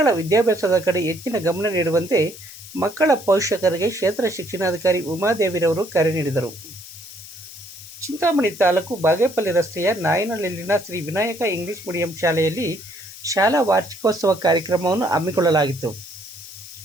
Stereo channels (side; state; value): left; noise; hiss, 16 dB below the sound